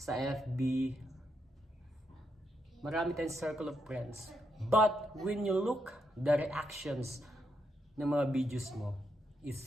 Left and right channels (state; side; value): normal; both; correlation 0.81